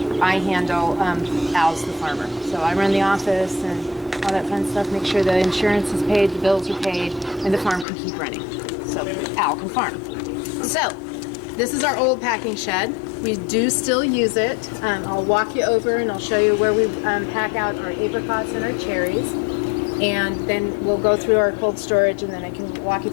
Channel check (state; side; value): drops out; right; at 7.9 s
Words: I handle. Al's the farmer. So I run the office and all that fun stuff, make sure the insurance is paid, the bills are paid, and the farm can keep running. So Al can farm. So this is our old packing shed. We do still use it. I'll walk you over and I'll show you where we pack out our apricots and our cherries. And then we'll go through our cold storage, and then I can walk you